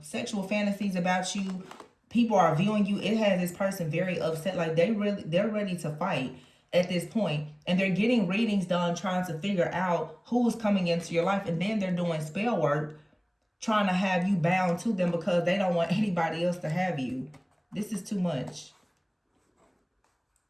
sexual fantasies about you, people are viewing you, it has this person very upset. Like they're ready to fight at this point, and they're getting readings done trying to figure out who's coming into your life, and then they're doing spell work trying to have you bound to them because they don't want anybody else to have you. This is too much.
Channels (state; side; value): identical; both; correlation 1.00